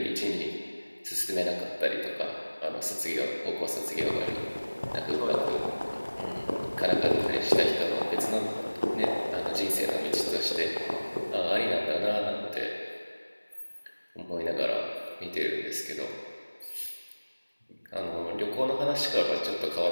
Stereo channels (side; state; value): both; inverted; correlation -1.00